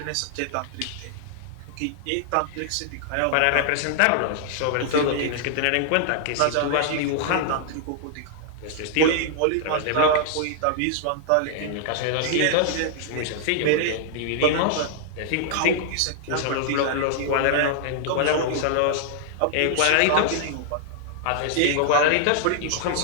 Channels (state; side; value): different; both; correlation -0.01